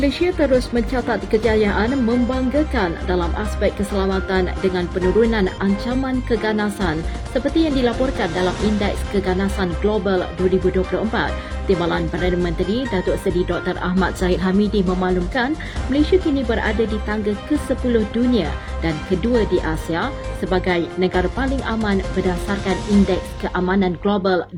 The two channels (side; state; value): both; identical; correlation 1.00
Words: terus mencatat kejayaan membanggakan dalam aspek keselamatan dengan penurunan ancaman keganasan seperti yang dilaporkan dalam Indeks Keganasan Global 2024. Timbalan Perdana Menteri Datuk Seri Dr. Ahmad Zahid Hamidi memaklumkan Malaysia kini berada di tangga ke-10 dunia dan kedua di Asia sebagai negara paling aman berdasarkan Indeks Keamanan Global